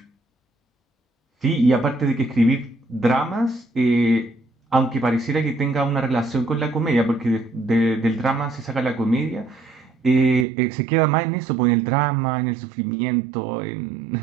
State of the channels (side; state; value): left; drops out; at 10.5 s